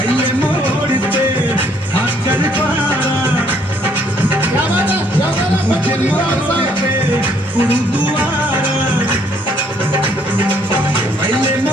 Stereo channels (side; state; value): both; normal; correlation 0.66